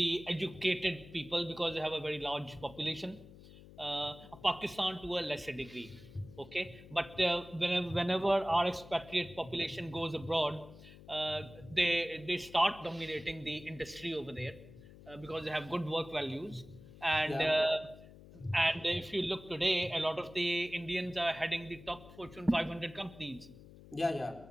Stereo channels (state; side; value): noise; left; hum, 19 dB below the sound